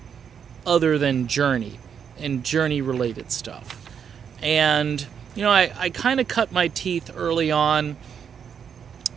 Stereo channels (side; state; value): left; quieter; 7.5 dB